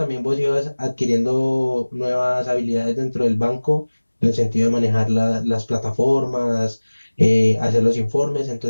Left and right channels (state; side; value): inverted; both; correlation -1.00